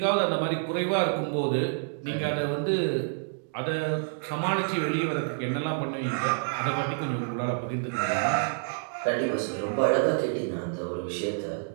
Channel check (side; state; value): left; silent; digital silence